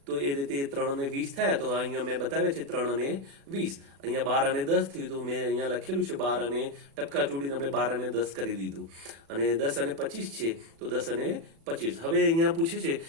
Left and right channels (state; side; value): late; left; 36 ms